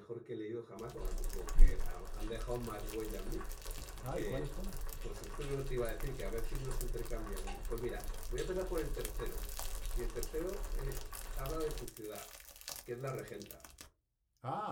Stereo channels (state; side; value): identical; both; correlation 1.00